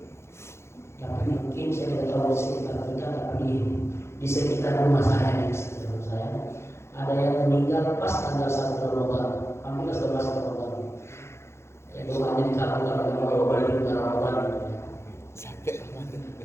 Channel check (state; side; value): late; right; 0.13 ms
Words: Tapi mungkin saya tidak tahu di sekitar kita, tapi di sekitar rumah saya, ada yang meninggal pas tanggal 1 Ramadan. Alhamdulillah sudah masuk Ramadan. Ya doanya dikabulkan oleh Allah balik ke Ramadan. Sampai Ramadan.